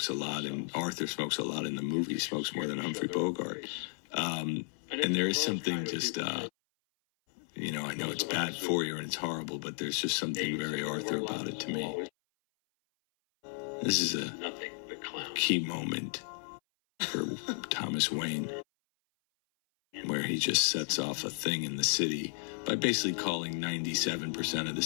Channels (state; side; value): silent; right; 55 dB below the other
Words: a lot, and Arthur smokes a lot in the movie. He smokes more than Humphrey Bogart. And there is something just, you know, I know it's bad for you and it's horrible, but there's just something very Arthur about it to me. This is a key moment for Thomas Wayne, where he just sets off a thing in the city by basically calling 97% of the